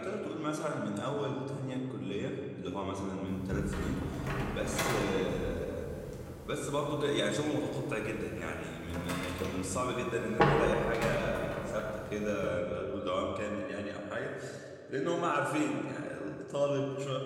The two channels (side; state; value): both; identical; correlation 1.00